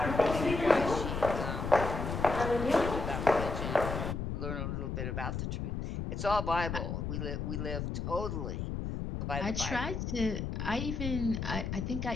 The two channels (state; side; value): noise; left; rumble, 3 dB below the sound